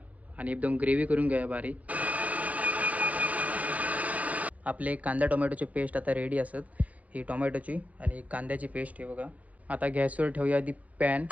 आणि एकदम ग्रेव्ही करून घेऊया बारीक. आपले कांदा टोमॅटोची पेस्ट आता रेडी असत, ही टोमॅटोची आणि कांद्याची पेस्ट आहे बघा. आता गॅसवर ठेवूया आधी पॅन,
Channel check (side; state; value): left; late; 0.071 ms